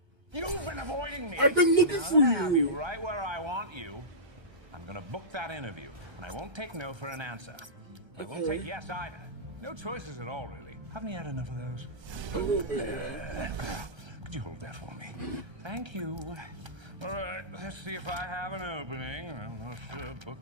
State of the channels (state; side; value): late; left; 1.3 ms